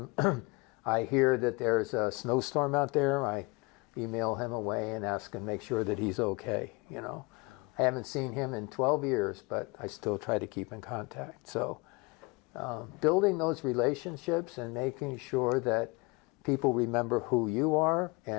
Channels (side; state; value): right; quieter; 27.1 dB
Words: I hear that there's a snowstorm out there, I email him away and ask him, make sure that he's okay. I haven't seen him in 12 years, but I still try to keep in contact. So building those relationships and making sure that people remember who you are